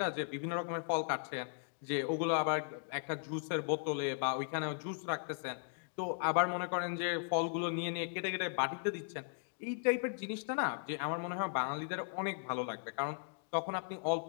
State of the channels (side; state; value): right; silent; digital silence